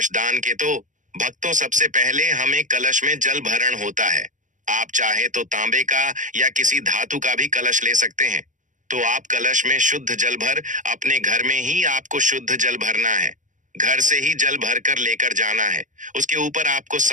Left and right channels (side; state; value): left; late; 0.37 ms